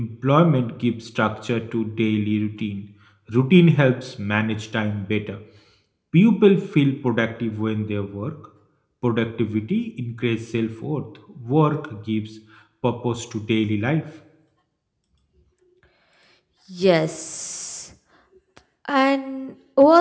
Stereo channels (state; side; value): identical; both; correlation 1.00